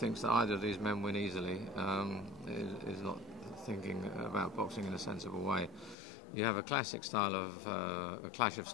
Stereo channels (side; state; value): right; drops out; at 6.0 s